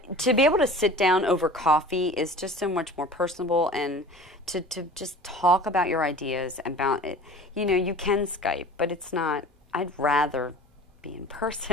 to be able to sit down over coffee is just so much more personable, and to just talk about your ideas about it. You can Skype, but it's not, I'd rather be in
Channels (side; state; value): both; normal; correlation 0.41